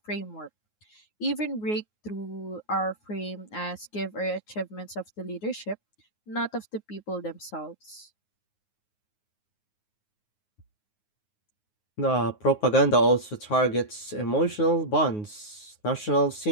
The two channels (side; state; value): right; late; 9.5 ms